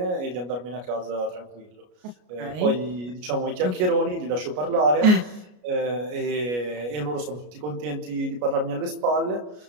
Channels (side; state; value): left; late; 33 ms